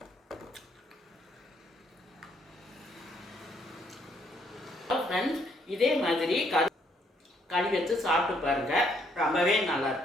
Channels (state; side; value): normal; both; correlation 0.69